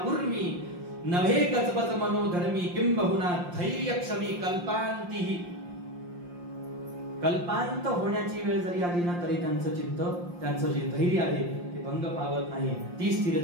उर्मी, नव्हे गजबज मनोधर्मी, किंबहुना धैर्य क्षमी कल्पांतीही. कल्पांत होण्याची वेळ जरी आली ना तरी त्यांचं चित्त, त्यांचं जे धैर्य आहे ते भंग पावत नाही. ती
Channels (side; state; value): left; late; 5.7 ms